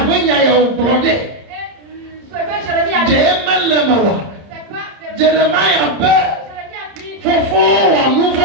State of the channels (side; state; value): left; late; 30 ms